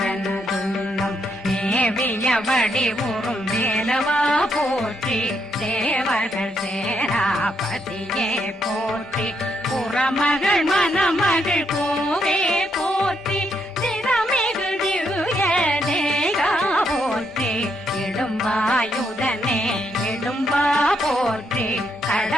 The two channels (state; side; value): normal; both; correlation 0.77